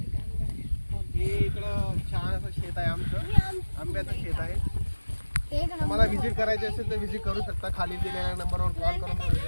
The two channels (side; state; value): both; inverted; correlation -1.00